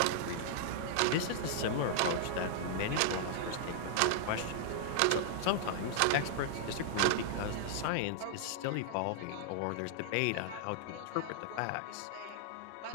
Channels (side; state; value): both; different; correlation -0.01